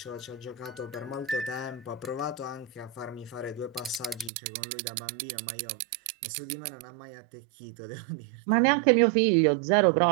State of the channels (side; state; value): left; drops out; at 4.3 s